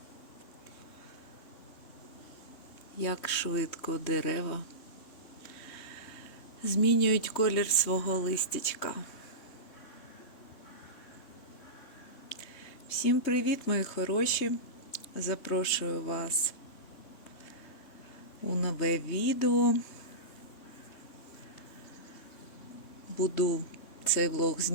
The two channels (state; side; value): late; right; 3.2 ms